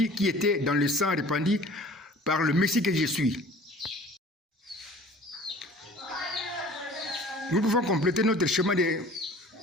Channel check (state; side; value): normal; both; correlation 0.47